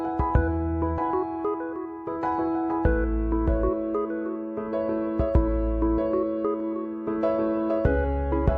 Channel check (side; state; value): both; identical; correlation 1.00